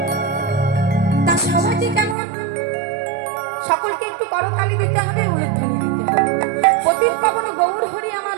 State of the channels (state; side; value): drops out; left; at 2.1 s